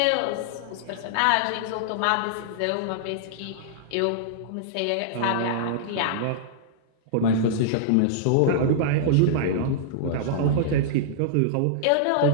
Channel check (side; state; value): both; different; correlation -0.01